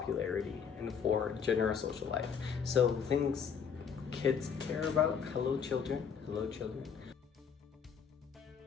And 4, general social life. So things kids care about. Hello children. Hello children.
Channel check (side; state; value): right; quieter; 6.8 dB